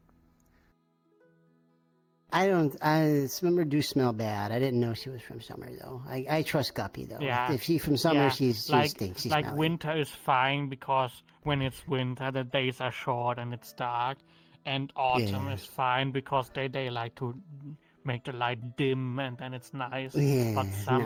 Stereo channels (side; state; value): both; identical; correlation 1.00